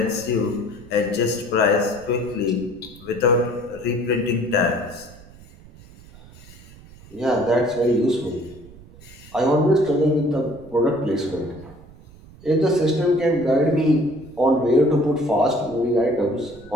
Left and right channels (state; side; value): noise; right; rumble, 21 dB below the sound